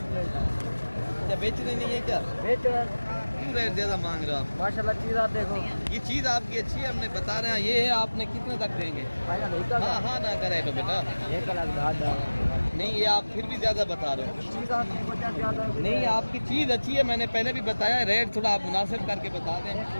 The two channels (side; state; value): both; inverted; correlation -1.00